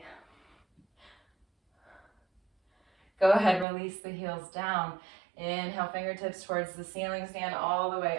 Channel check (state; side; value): drops out; left; at 3.7 s